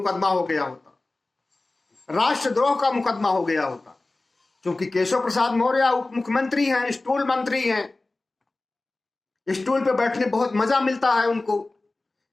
हो गया होता, राष्ट्रद्रोह का मुकदमा हो गया होता। क्योंकि केशव प्रसाद मौर्य उप मुख्यमंत्री हैं, स्टूल मंत्री हैं, स्टूल पे बैठने बहुत मजा मिलता है उनको,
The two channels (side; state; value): right; quieter; 3.1 dB